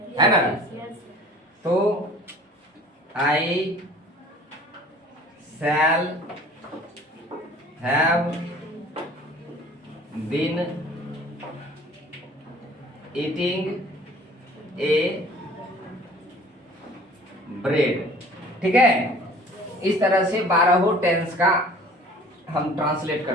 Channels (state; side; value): normal; both; correlation 0.48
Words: है ना। तो I shall have been eating a bread, ठीक है। इस तरह से 12 टेंस का हम ट्रांसलेट